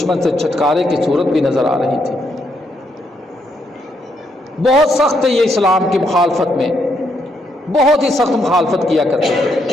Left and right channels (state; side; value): normal; both; correlation 0.76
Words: سے چھٹکارے کی صورت بھی نظر آ رہی تھی۔ بہت سخت ہے یہ اسلام کی مخالفت میں، بہت ہی سخت مخالفت کیا کرتے